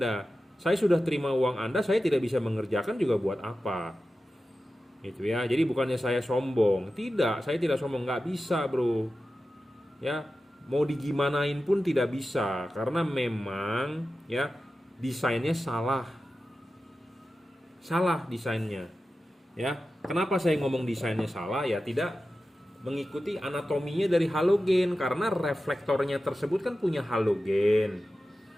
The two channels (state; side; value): normal; both; correlation 0.93